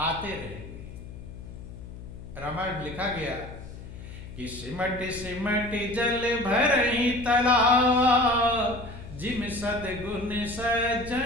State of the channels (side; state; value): left; noise; hum, 13 dB below the sound